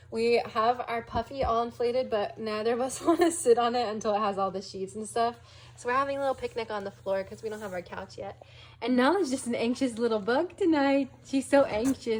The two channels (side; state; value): both; identical; correlation 1.00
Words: We have our puffy all inflated, but neither of us want to sit on it until it has all the sheets and stuff. So we're having a little picnic on the floor because we don't have our couch yet. And Nala's just an anxious little bug tonight. She's so